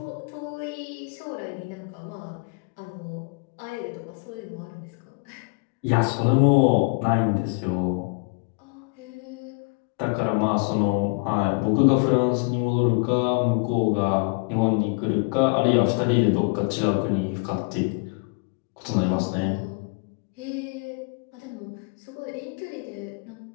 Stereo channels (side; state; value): right; quieter; 34.9 dB